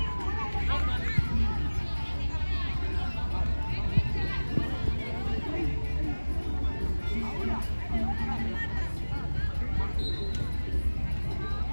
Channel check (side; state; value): both; inverted; correlation -1.00